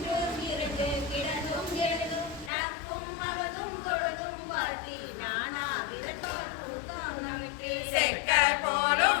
இருந்து கிடந்தும் எழுதும் நட்பும் அவதும் பொழுதும் வாழ்த்தி நானா விரட்டால் கூட்டம் நமக்கே செக்க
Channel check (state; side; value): drops out; right; at 2.5 s